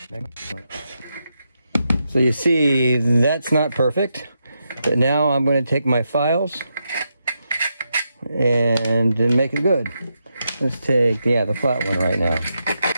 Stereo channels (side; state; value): both; inverted; correlation -0.84